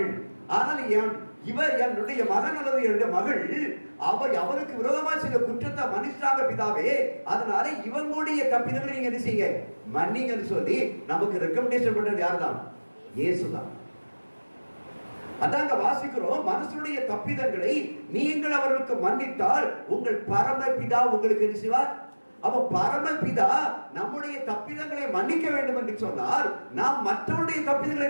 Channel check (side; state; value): both; inverted; correlation -1.00